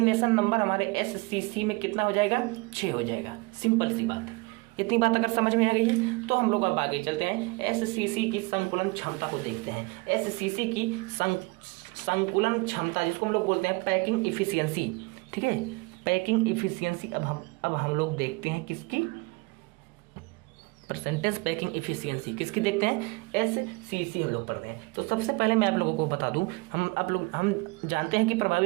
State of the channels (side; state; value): left; quieter; 26.3 dB